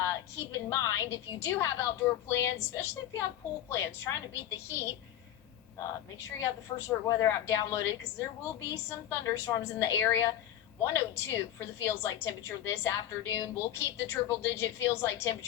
keep in mind if you do have outdoor plans, especially if you have pool plans, trying to beat the heat. Make sure you have the First Alert weather app downloaded because there will be some thunderstorms in the area. 102 for the feels like temperature this afternoon. We'll keep the triple digit feels like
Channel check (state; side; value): quieter; right; 11.9 dB